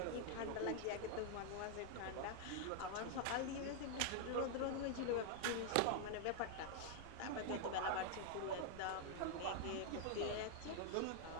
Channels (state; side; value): different; both; correlation 0.00